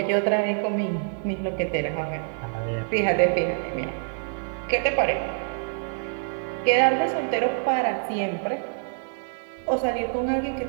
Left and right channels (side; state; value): left; silent; digital silence